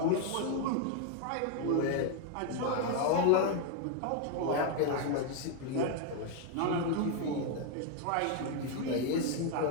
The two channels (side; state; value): both; different; correlation 0.01